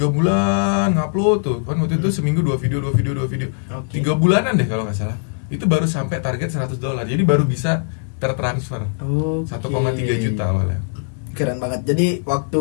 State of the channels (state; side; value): silent; right; digital silence